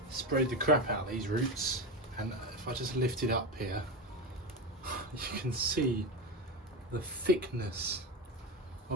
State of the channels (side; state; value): both; normal; correlation 0.18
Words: sprayed the crap out of these roots, and if I just lift it up here, you can see the thickness